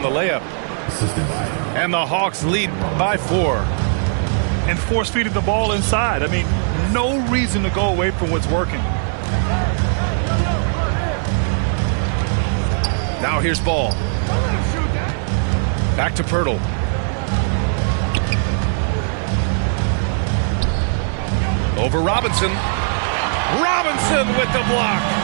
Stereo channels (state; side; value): silent; left; 66 dB below the other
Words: the layup. And the Hawks lead by 4. And force-feeding the ball inside. I mean, no reason to go away from what's working. Now here's Ball. Back to Pirtle. Over Robinson. Robinson with the block.